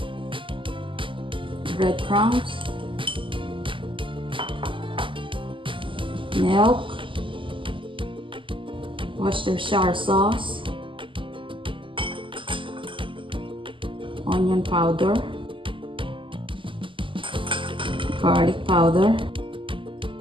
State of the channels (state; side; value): late; left; 0.25 ms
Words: breadcrumbs, milk, Worcestershire sauce, onion powder, garlic powder,